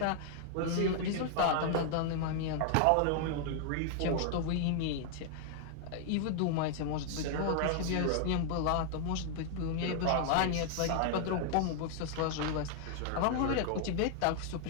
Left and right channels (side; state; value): both; different; correlation 0.00